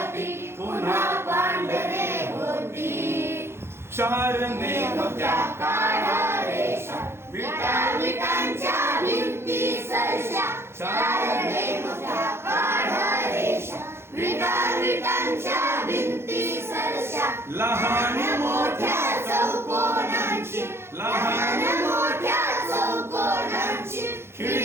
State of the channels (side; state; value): left; late; 0.12 ms